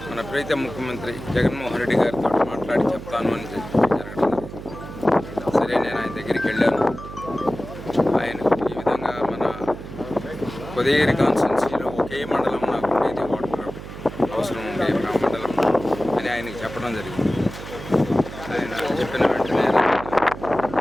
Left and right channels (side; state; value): right; noise; hum, 12 dB below the sound